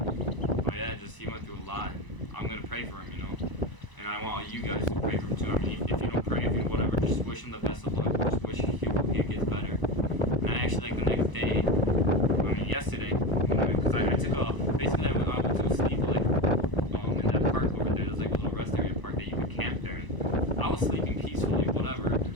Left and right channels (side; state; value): right; late; 1.0 ms